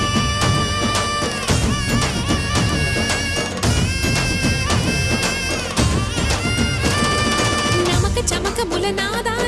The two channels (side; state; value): both; identical; correlation 1.00